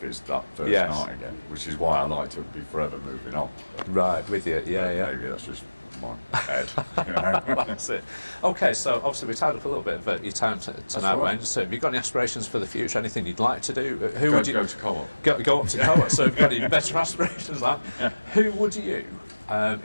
it's that first night again, which is why I like to be forever moving on. Right, with you, yeah. Maybe that's just my head. You know? That's it. Okay, so obviously we tied up a little bit of your time tonight, Wayne. So have you got any aspirations for the future? Anything you'd like to do? Who would you go to co-op? Go up to co-op. So have you got any better aspirations? Who would you,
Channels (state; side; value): inverted; both; correlation -1.00